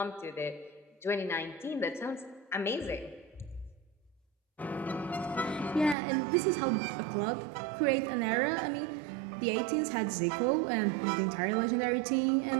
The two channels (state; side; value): drops out; left; at 6.0 s